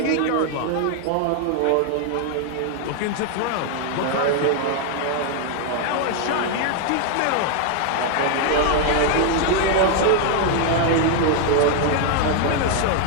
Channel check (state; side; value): different; both; correlation 0.00